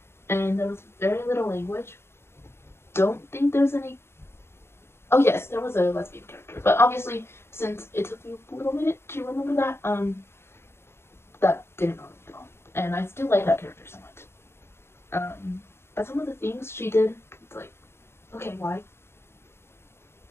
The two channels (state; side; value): late; right; 0.12 ms